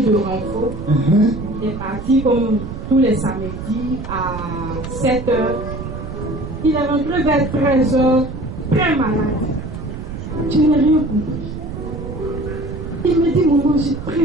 de renfort. Il est parti comme tous les samedis à 7 h. Il est rentré vers 13 h, très malade. Je n'ai rien compris. Il me dit, maman, j'ai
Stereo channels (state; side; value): noise; right; rumble, 8 dB below the sound